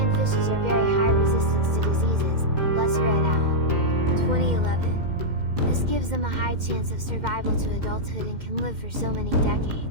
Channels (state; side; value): late; left; 2.1 ms